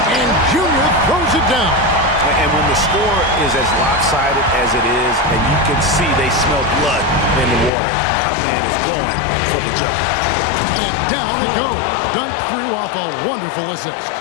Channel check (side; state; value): right; drops out; at 7.7 s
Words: and Junior throws it down. And when the score is as lopsided as it is, and you can see they smell blood in the water, our man is going for the jumper. And down it goes. Dunk through off a wonderful assist.